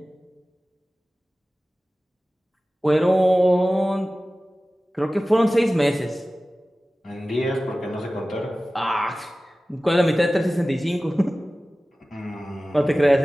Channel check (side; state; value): both; normal; correlation 0.97